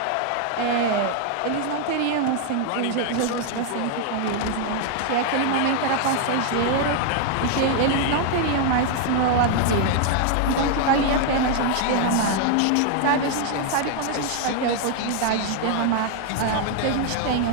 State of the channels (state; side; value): different; both; correlation 0.00